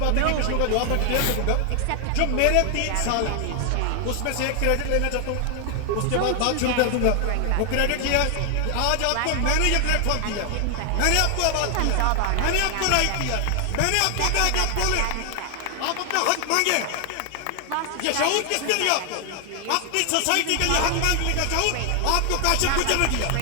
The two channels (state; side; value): different; both; correlation 0.00